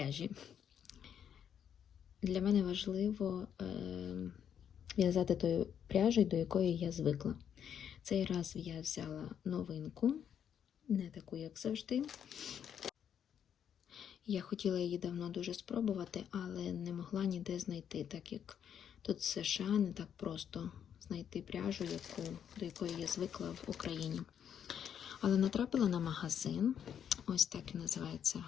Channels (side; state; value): right; quieter; 8.7 dB